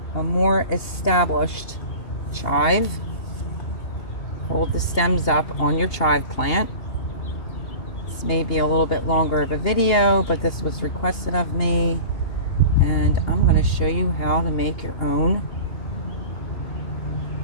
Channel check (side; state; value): right; late; 2.8 ms